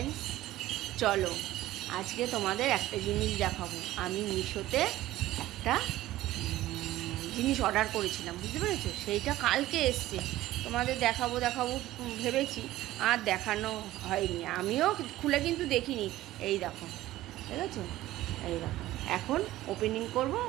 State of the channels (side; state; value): left; quieter; 15.5 dB